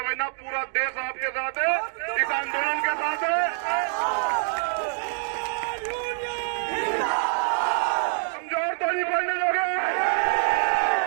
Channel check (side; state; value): left; silent; digital silence